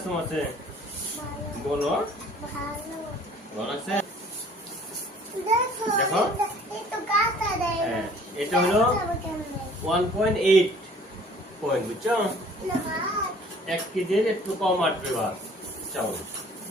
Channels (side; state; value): both; normal; correlation 0.53